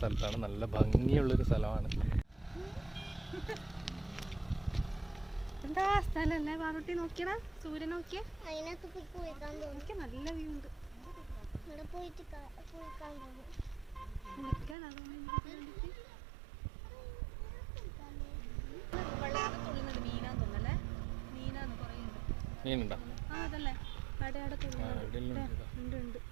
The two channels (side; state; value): left; drops out; at 14.8 s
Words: സ്ഥലത്താണ്. നല്ല ഭംഗിയുള്ളൊരു സ്ഥലമാണ്. എന്താ സ്ഥലല്ലേ പാറുട്ടി, നോക്കിയടാ സൂര്യൻ നോക്കിയേ. നല്ല വ്യൂ ഉണ്ട്. മീനുണ്ടോ?